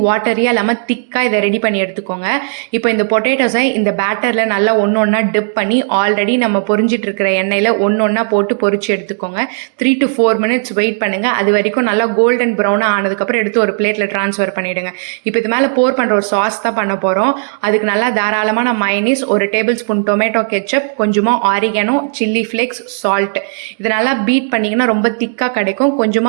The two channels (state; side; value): silent; left; digital silence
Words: வாட்டரியாக இல்லாமல் திக்காக இதை ரெடி பண்ணி எடுத்துக்கோங்க. இப்போ இந்த பொட்டேட்டோஸை இந்த பேட்டரில் நல்லா ஒன்று ஒன்றா டிப் பண்ணி ஆல்ரெடி நம்ம பொரிஞ்சிட்டு இருக்கிற எண்ணெயில் ஒன்றா போட்டு பொரிச்சு எடுத்துக்கோங்க. 3 to 4 minutes வெயிட் பண்ணுங்க. அது வரைக்கும் நல்லா கோல்டன் ப்ரௌனாக ஆனதுக்கப்புறம் எடுத்து ஒரு பிளேட்டில் ட்ரான்ஸ்ஃபர் பண்ணிடுங்க. இப்போ இது மேலே போர் பண்ணுற ஒரு சாஸ் தான் பண்ண போகிறோம். அதுக்கு நல்லா தாராளமான mayonnaise, 1 tablespoon tomato ketchup, கொஞ்சமாக ஆரிகானோ, சில்லி ஃப்ளேக்ஸ், சால்ட், இது நல்லா பீட் பண்ணிங்கன்னா ரொம்ப திக்காக கிடைக்கும்.